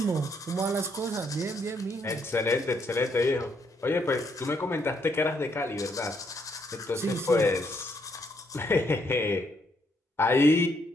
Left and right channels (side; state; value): both; normal; correlation 0.73